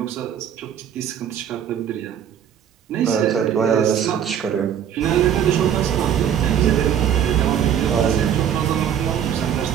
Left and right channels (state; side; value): quieter; left; 9.2 dB